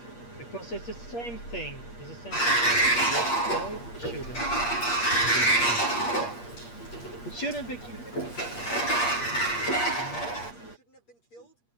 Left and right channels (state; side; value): late; right; 8.5 ms